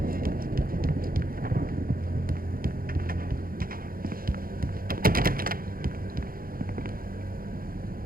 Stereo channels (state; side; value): late; left; 0.42 ms